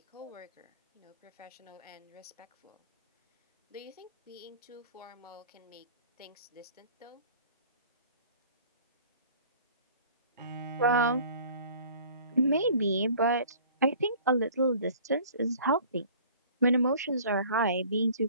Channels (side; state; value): both; inverted; correlation -0.50